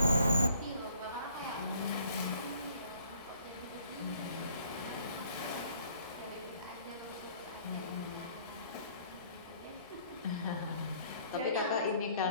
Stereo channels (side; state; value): both; inverted; correlation -0.60